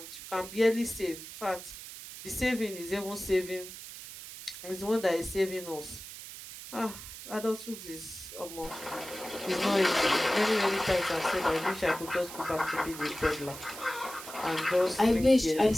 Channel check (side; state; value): right; noise; hiss, 12 dB below the sound